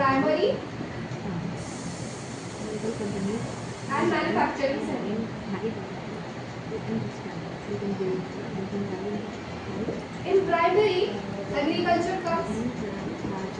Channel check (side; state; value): both; identical; correlation 1.00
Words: and manufacturing sector. In primary, agriculture comes,